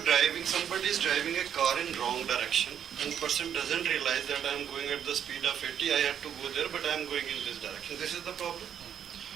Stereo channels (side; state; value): left; quieter; 9.0 dB